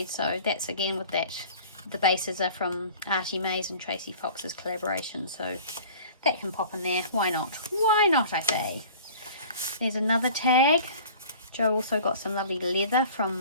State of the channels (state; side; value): inverted; both; correlation -0.45